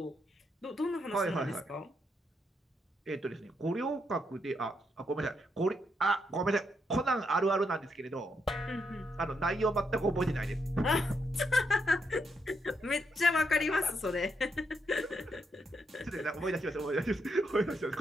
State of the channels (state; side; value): normal; both; correlation 0.79